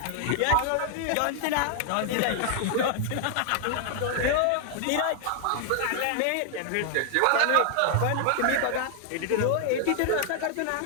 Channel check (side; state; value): both; different; correlation 0.00